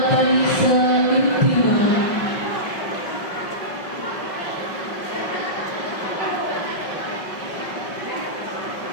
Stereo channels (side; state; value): right; late; 5.4 ms